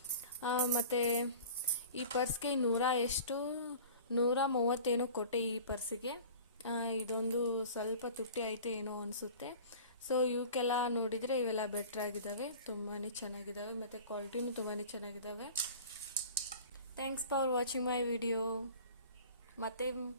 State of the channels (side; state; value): both; inverted; correlation -0.41